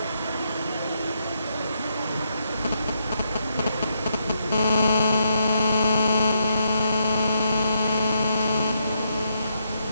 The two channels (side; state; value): both; inverted; correlation -0.78